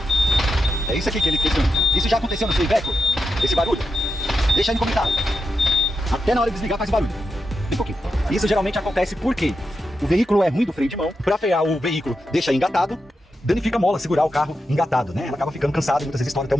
É isso aqui que ele questiona. Isso já aconteceu no seu Iveco? Esse barulho? Deixa aí no comentário. Até na hora de desligar faz barulho. Bem pouquinho. Isso geralmente acontece porque o veículo é ruim do freio de mão. Para frear o veículo, deixa engatado. Danifica a mola, segurar o carro engatado, né? Ela acaba ficando cansada e muitas vezes estoura até o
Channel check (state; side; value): normal; both; correlation 0.87